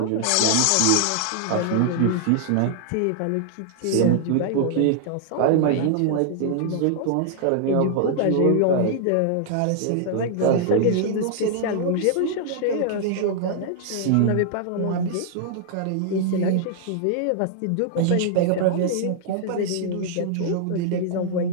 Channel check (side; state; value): both; different; correlation 0.00